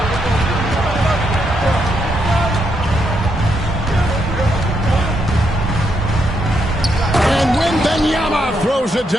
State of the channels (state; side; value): normal; both; correlation 0.79